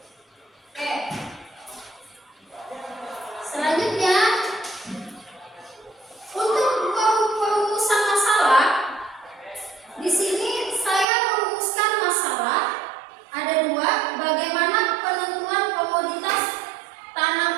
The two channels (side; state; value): left; drops out; at 11.1 s